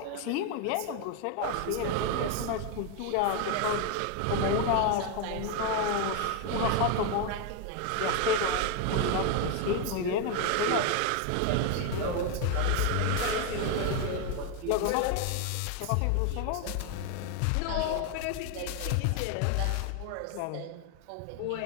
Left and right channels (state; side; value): different; both; correlation 0.01